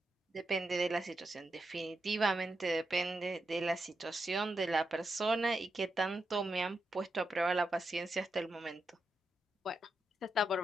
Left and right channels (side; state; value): both; normal; correlation 0.86